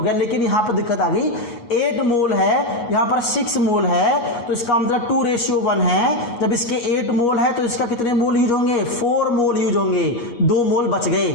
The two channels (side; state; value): right; late; 8.4 ms